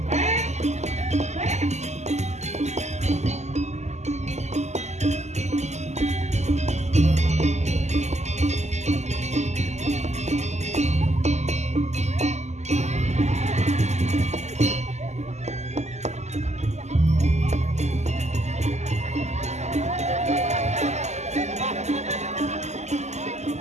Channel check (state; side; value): late; left; 0.33 ms